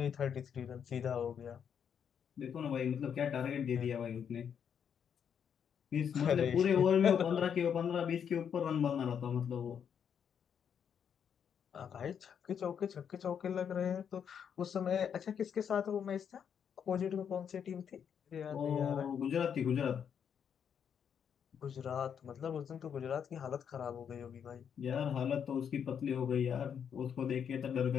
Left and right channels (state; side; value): quieter; right; 7.9 dB